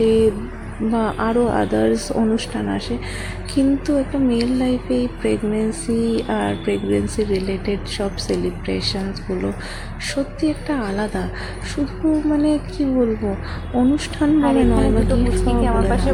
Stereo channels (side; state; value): both; identical; correlation 1.00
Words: বা আরও আদার্স অনুষ্ঠান আসে, কিন্তু একটা মেয়ের লাইফে এই প্রেগনেন্সি আর প্রেগনেন্সি রিলেটেড সব সেলিব্রেশনসগুলো সত্যি একটা আলাদা। শুধু মানে কি বলবো, অনুষ্ঠান বলে নয় বা দুটো মুচকিকে আমার পাশে